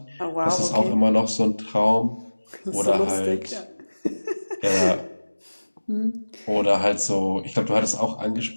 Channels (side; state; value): both; inverted; correlation -1.00